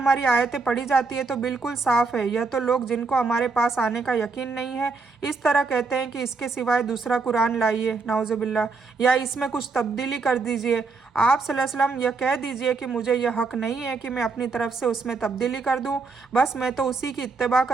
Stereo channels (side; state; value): left; quieter; 4.3 dB